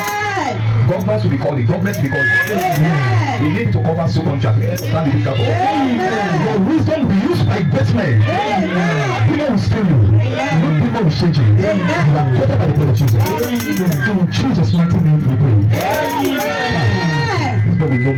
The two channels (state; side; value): identical; both; correlation 1.00